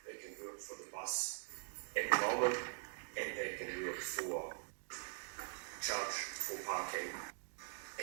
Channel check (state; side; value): silent; left; digital silence